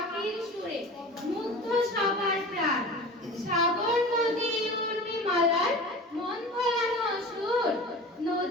সুরে মুগ্ধ সবার প্রাণ। সাগর নদী উর্মিমালার মন ভোলানো সুর,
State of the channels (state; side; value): normal; both; correlation 0.36